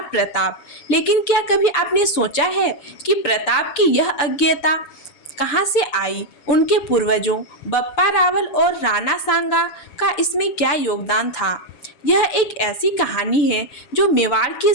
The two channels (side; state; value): right; late; 6.8 ms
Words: प्रताप। लेकिन क्या कभी आपने सोचा है कि प्रताप की यह अज्ञेयता कहाँ से आई? उनके पूर्वजों बप्पा रावल और राणा सांगा का इसमें क्या योगदान था? यह एक ऐसी कहानी है जो मेवाड़ के